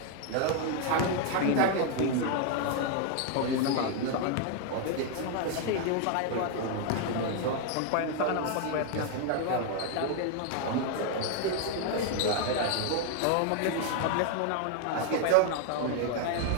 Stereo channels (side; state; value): both; different; correlation 0.00